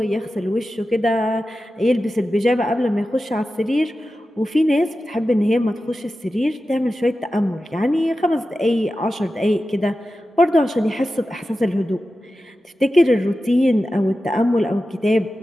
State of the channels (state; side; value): normal; both; correlation 0.93